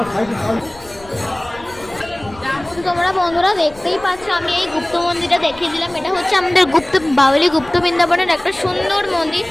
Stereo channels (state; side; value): noise; left; rumble, 22 dB below the sound